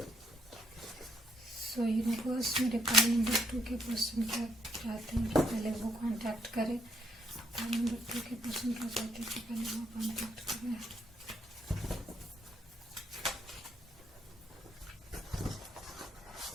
सो यूनिवर्स मेरे कार्ड नंबर 2 के पर्सन क्या चाहते हैं कि पहले वो कांटेक्ट करें। कार्ड नंबर 2 के पर्सन क्या चाहते हैं कि पहले वो कांटेक्ट करें।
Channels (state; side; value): normal; both; correlation 0.71